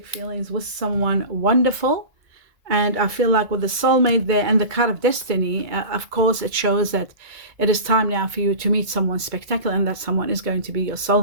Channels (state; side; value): late; left; 2.2 ms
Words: feelings with someone wonderful. And I feel like with the soulmate there and the card of destiny, of course, it shows that it is time now for you to meet someone spectacular, and that someone is going to be your